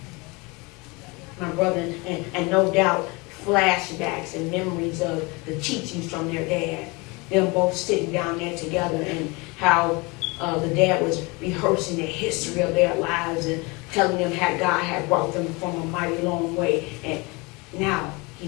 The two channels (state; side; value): quieter; right; 26.6 dB